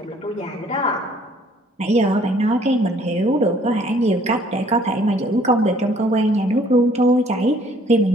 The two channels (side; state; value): both; normal; correlation 0.59